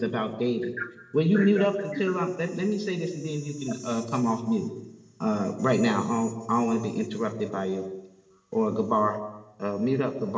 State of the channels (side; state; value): both; identical; correlation 1.00